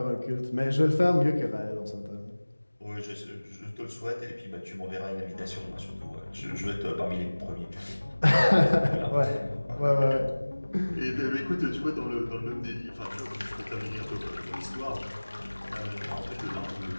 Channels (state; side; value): inverted; both; correlation -1.00